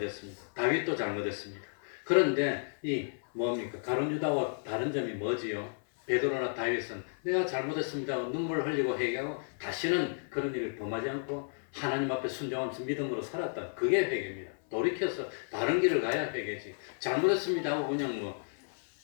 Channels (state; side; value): silent; right; 56 dB below the other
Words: 다윗도 잘못했습니다. 그런데 이 뭡니까? 가룟 유다와 다른 점이 뭐지요? 베드로나 다윗은 내가 잘못했습니다 하고 눈물을 흘리고 회개하고 다시는 그런 일을 범하지 않고 하나님 앞에 순종하면서 믿음으로 살았다. 그게 회개입니다. 돌이켜서 다른 길을 가야 회개지. 잘못했습니다 하고 그냥 뭐